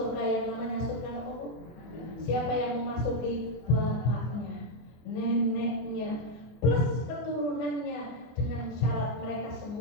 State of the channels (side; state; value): right; late; 24 ms